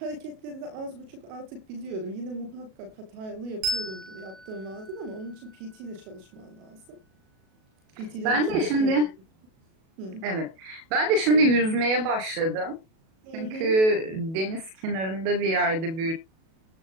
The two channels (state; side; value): late; left; 37 ms